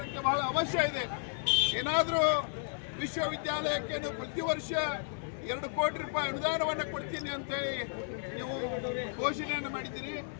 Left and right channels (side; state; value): right; silent; 56 dB below the other